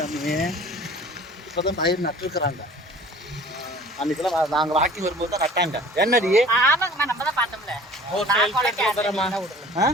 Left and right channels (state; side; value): normal; both; correlation 0.47